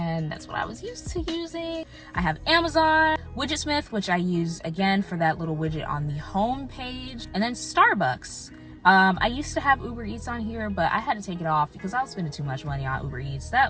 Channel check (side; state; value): both; identical; correlation 1.00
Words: that's what I was used to using. I have Amazon, Widgetsmith, which I use again for that little widget on the home page, and then Starbucks. I used to have Uber Eats on here, but I had to take it off because I was spending too much money on Uber Eats.